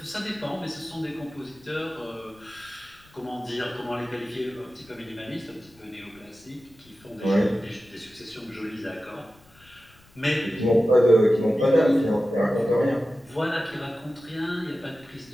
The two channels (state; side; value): noise; left; rumble, 28 dB below the sound